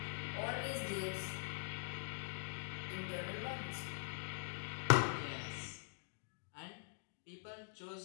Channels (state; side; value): silent; right; digital silence